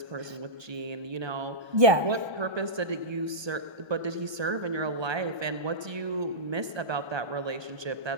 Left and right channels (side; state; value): left; late; 1.2 ms